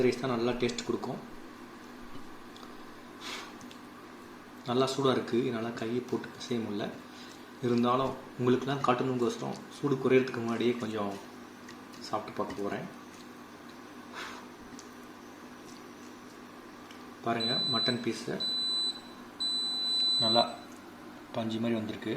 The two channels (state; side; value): identical; both; correlation 1.00